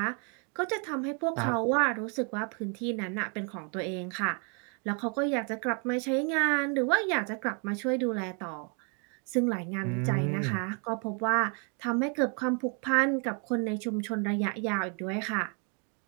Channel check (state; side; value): quieter; left; 37.6 dB